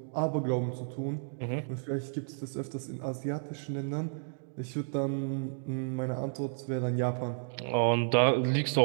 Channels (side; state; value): left; silent; digital silence